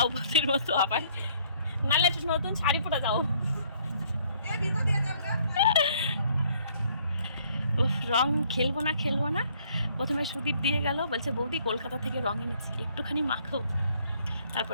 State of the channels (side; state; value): both; inverted; correlation -0.64